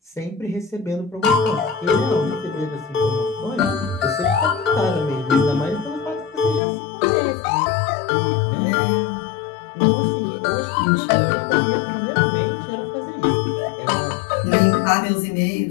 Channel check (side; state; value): right; drops out; at 6.6 s